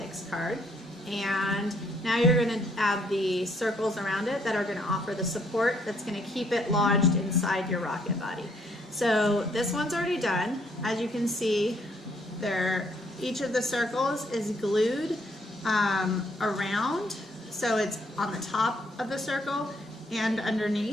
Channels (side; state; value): both; normal; correlation 0.68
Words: card, and now you're going to add the circles around it that are going to offer the support that's going to keep it lodged inside your rocket body. So this one's already done. As you can see, each of the circles is glued around, so it's on the top of the circle and